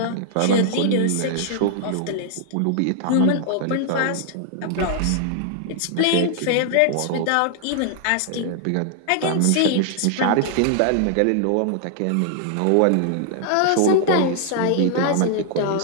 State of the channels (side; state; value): both; different; correlation 0.00